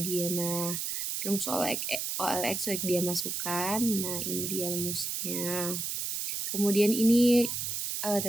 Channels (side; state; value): right; noise; hiss, 2 dB below the sound